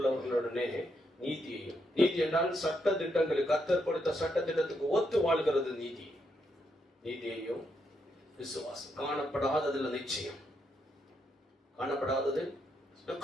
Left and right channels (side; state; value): both; normal; correlation 0.79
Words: நீதியையும், நீதி என்றால் சட்ட திட்டங்களுக்கு, கர்த்தர் கொடுத்த சட்ட திட்டத்துக்கு ஒத்து வாழ்கிறது நீதி. நீதியையும் விசுவாசம், காணப்படாததுல நிச்சயம், காணப்படாதது